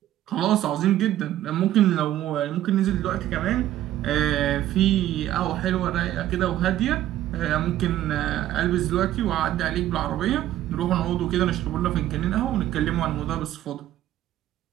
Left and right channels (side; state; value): left; quieter; 13.1 dB